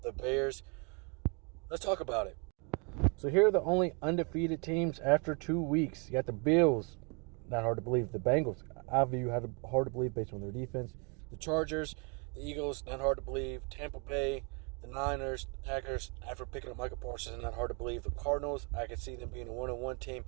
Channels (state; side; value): quieter; left; 34.9 dB